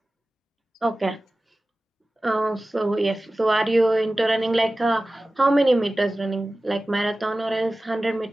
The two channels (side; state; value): both; normal; correlation 0.96